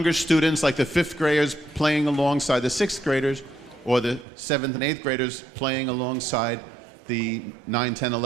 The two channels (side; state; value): left; drops out; at 4.2 s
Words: students, like the 5th graders playing alongside the 6th graders, or the 7th and 8th graders playing alongside the 9, 10,